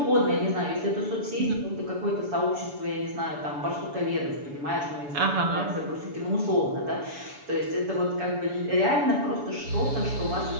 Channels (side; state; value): left; late; 7.0 ms